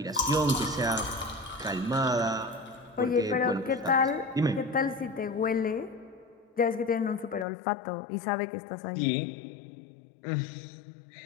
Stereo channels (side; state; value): right; drops out; at 7.5 s